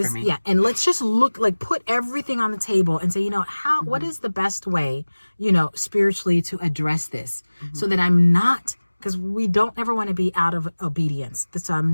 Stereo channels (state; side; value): inverted; both; correlation -1.00